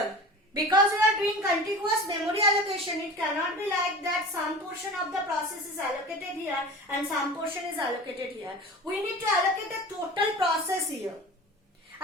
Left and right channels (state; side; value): normal; both; correlation 0.36